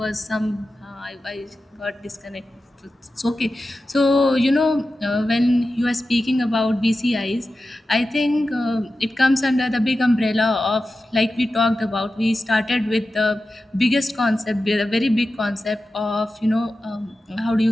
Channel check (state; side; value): normal; both; correlation 0.93